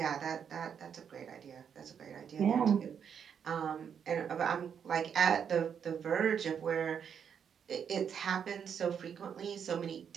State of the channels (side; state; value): left; quieter; 7.6 dB